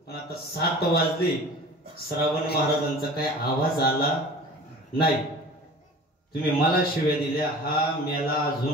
पण आता 7 वाजले, श्रावण महाराजांचा काय आवाज आला नाही. तुम्ही मला शिव्या दिल्या, हा मेला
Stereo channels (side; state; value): both; normal; correlation 0.41